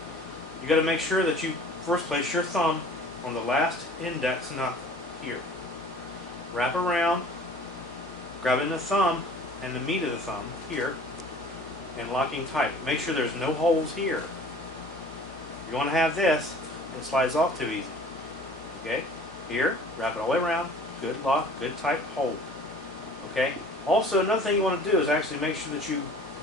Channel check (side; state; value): both; normal; correlation 0.47